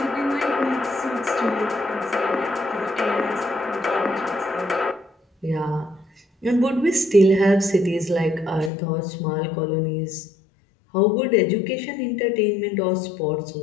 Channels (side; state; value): right; drops out; at 8.7 s